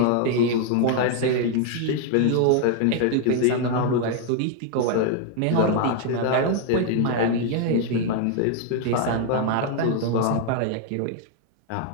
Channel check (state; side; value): different; both; correlation 0.00